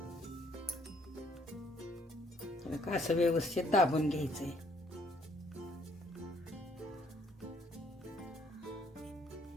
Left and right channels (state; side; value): normal; both; correlation 0.65